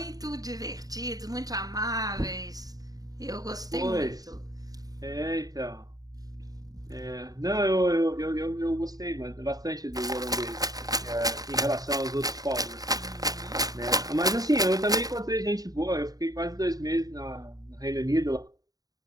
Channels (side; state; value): left; late; 0.18 ms